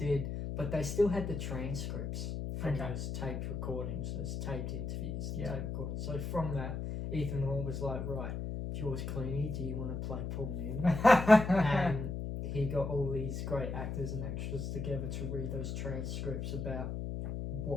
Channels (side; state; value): left; noise; hum, 4 dB below the sound